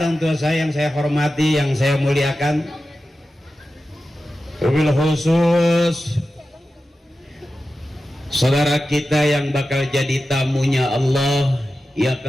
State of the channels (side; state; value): both; normal; correlation 0.93